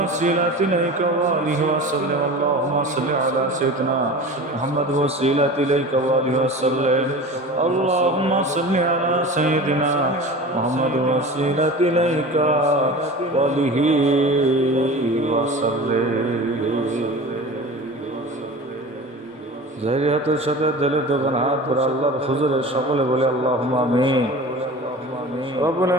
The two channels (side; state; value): both; normal; correlation 0.35